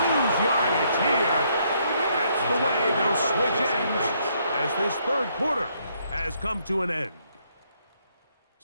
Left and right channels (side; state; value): both; inverted; correlation -0.71